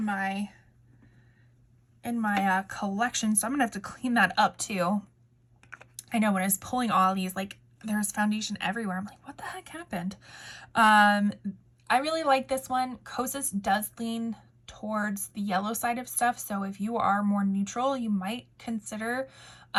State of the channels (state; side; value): identical; both; correlation 1.00